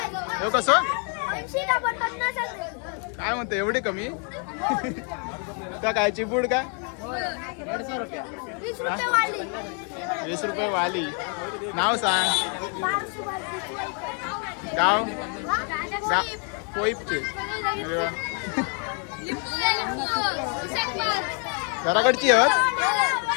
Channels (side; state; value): right; quieter; 40.0 dB